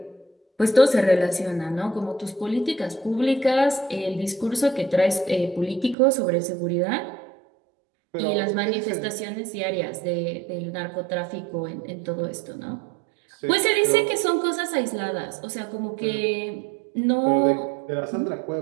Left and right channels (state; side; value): drops out; left; at 6.0 s